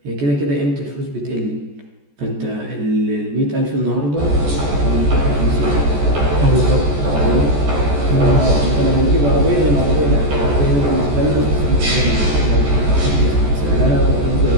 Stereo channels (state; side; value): late; left; 14 ms